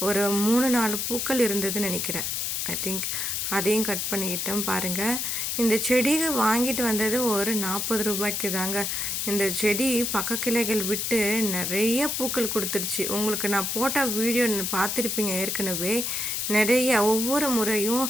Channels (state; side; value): noise; left; hiss, 1 dB below the sound